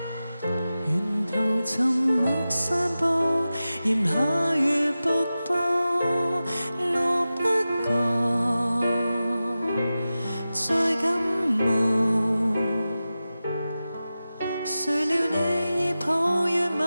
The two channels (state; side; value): inverted; both; correlation -0.94